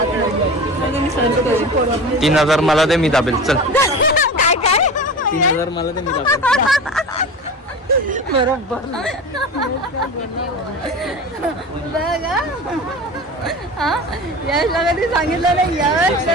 3000 मला दे, मी दाबेल. चल काय काय 3000 मला दे, मी दाबेल. बरोबर बघा. हा यशला कधी सांगितलं नाही, यश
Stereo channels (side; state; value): both; normal; correlation 0.32